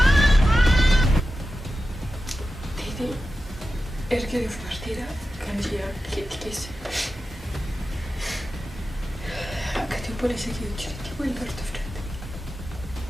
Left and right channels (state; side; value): normal; both; correlation 0.92